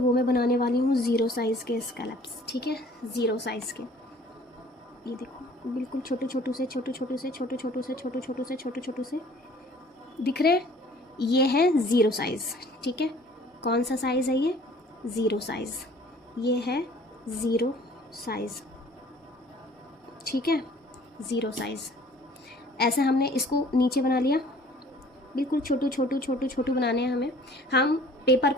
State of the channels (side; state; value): both; normal; correlation 0.53